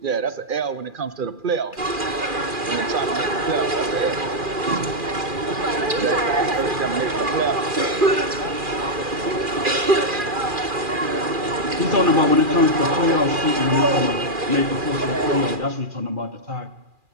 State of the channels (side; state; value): left; late; 2.4 ms